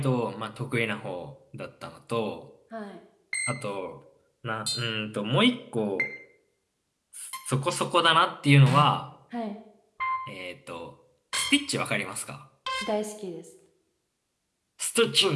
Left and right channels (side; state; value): both; identical; correlation 1.00